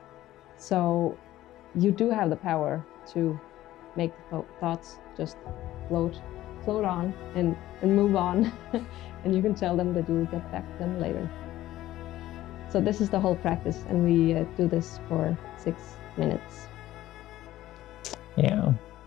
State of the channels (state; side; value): quieter; right; 14.7 dB